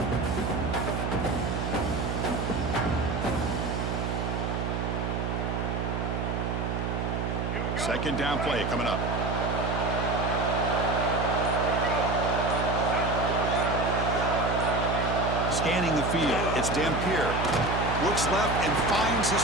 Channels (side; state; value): right; noise; hum, 1 dB below the sound